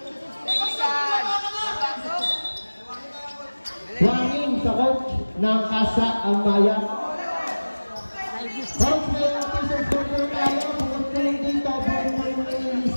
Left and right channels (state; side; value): inverted; both; correlation -1.00